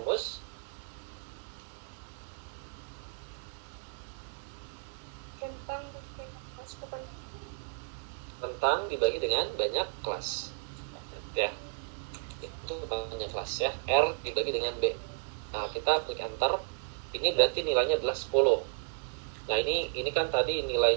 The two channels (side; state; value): left; silent; 56 dB below the other